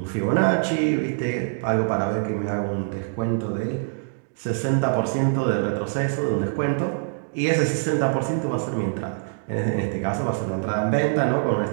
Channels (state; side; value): silent; left; digital silence